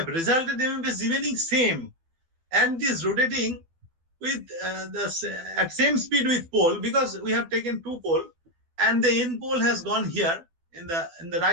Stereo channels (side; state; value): left; late; 12 ms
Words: resultant MMF is remaining same, and is rotating with at same speed with pole, because we have taken 2 pole, and the N pole has gone here in the